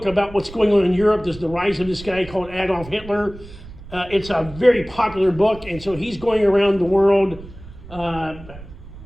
about what's going on in Europe. There's the rise of this guy called Adolf Hitler. It's a very popular book, and so he's going around the world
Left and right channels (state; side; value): noise; right; rumble, 17 dB below the sound